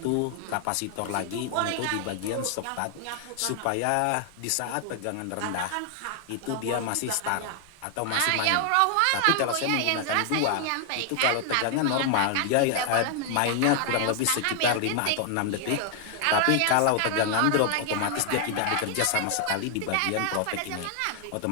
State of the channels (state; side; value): different; both; correlation 0.00